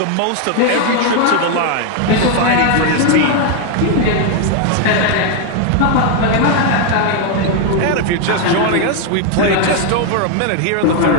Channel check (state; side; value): different; both; correlation 0.01